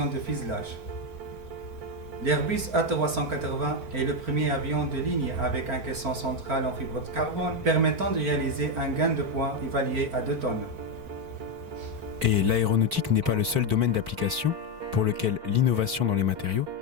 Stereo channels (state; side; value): late; left; 4.3 ms